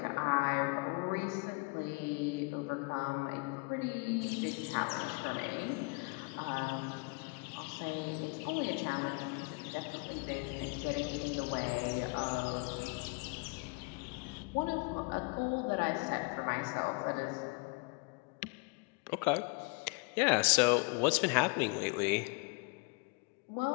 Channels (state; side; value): quieter; right; 31.4 dB